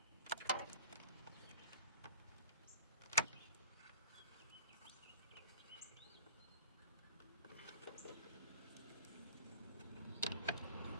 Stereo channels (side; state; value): both; inverted; correlation -0.41